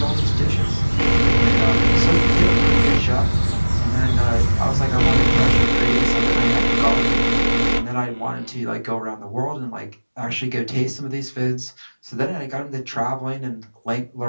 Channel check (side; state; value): both; inverted; correlation -1.00